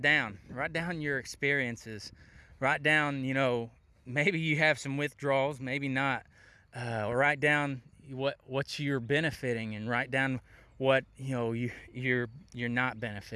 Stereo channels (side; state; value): both; identical; correlation 1.00